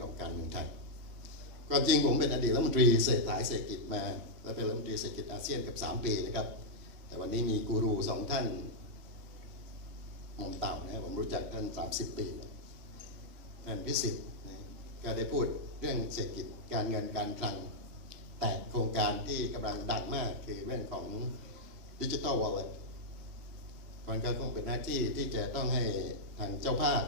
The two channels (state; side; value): late; left; 3.0 ms